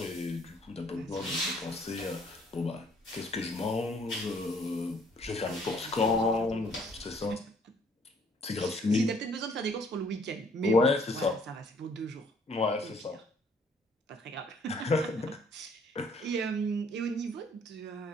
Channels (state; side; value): normal; both; correlation 0.62